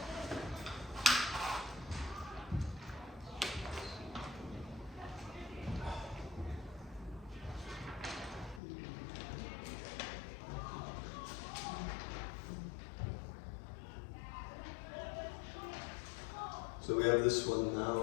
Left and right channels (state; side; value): drops out; right; at 8.6 s